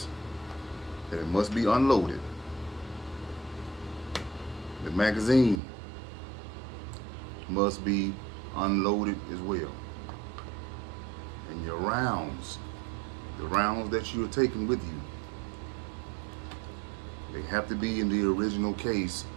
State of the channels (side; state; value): left; drops out; at 5.6 s